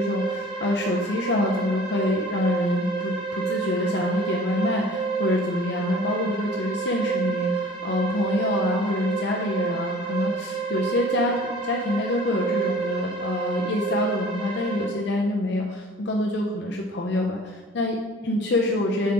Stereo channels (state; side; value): normal; both; correlation 0.47